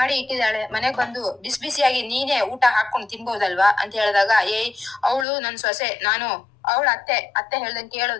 ಇಟ್ಟಿದ್ದಾಳೆ, ಮನೆಗ್ ಬಂದು ಬಿಸಿ ಬಿಸಿಯಾಗಿ ನೀನೇ ಊಟ ಹಾಕೊಂಡು ತಿನ್ಬೋದಲ್ವಾ ಅಂತ ಹೇಳಿದಾಗ, ಅವಳು ನನ್ ಸೊಸೆ, ನಾನು ಅವಳ ಅತ್ತೆ ಹೇಳ್ದಂಗೆ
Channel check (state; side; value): drops out; right; at 5.2 s